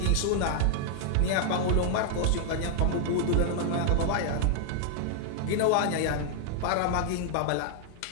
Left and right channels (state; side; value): different; both; correlation -0.01